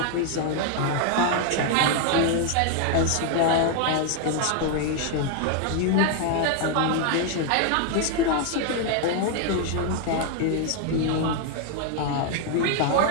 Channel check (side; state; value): both; different; correlation 0.00